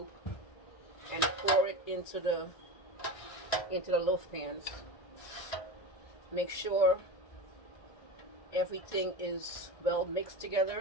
and pour it into the loaf pans. Make sure everything is well mixed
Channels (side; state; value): right; late; 1.6 ms